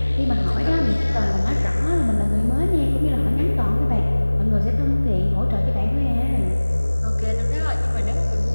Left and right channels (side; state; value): both; inverted; correlation -1.00